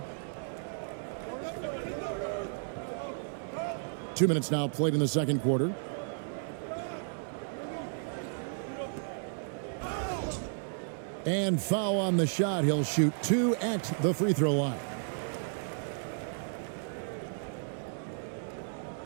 2 minutes now played in the second quarter. And foul on the shot. He'll shoot 2 at the free throw line.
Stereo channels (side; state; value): left; silent; digital silence